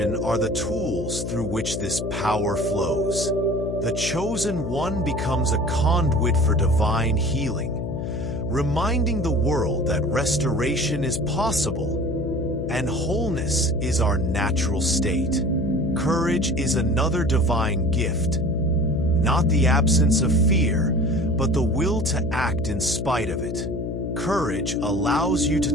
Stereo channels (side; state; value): left; noise; hum, 4 dB below the sound